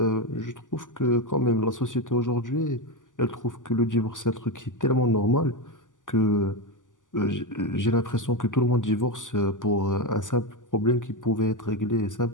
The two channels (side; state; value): right; late; 0.87 ms